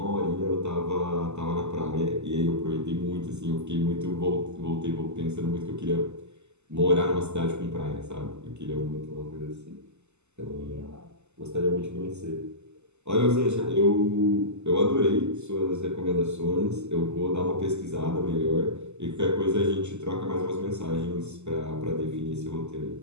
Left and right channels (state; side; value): late; left; 0.82 ms